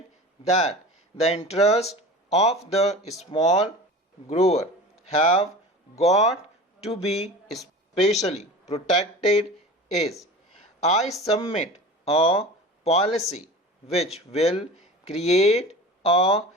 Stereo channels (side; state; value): both; normal; correlation 0.35